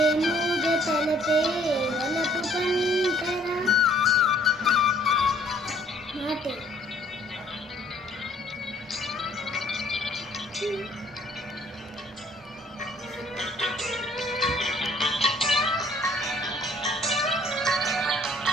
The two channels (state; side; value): normal; both; correlation 0.60